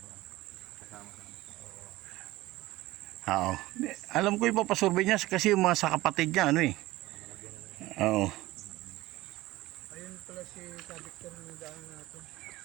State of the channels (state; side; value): quieter; left; 18.1 dB